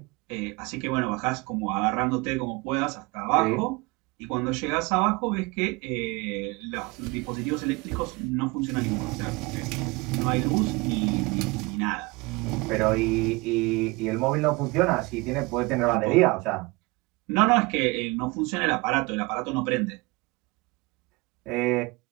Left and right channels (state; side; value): quieter; left; 25.2 dB